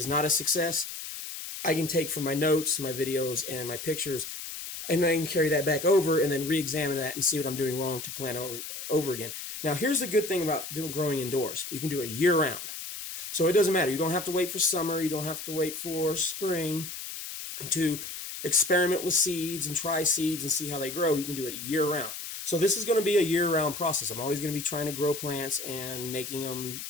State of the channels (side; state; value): left; noise; hiss, 8 dB below the sound